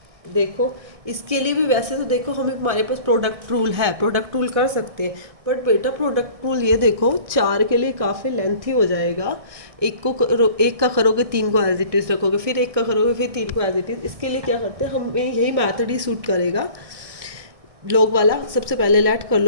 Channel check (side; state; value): left; late; 1.6 ms